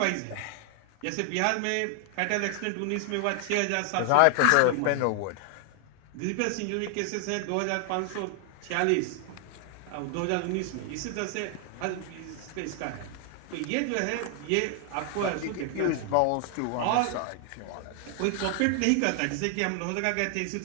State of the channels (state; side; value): different; both; correlation 0.00